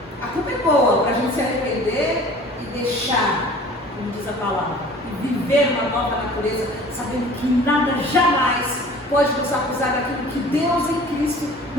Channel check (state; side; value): normal; both; correlation 0.46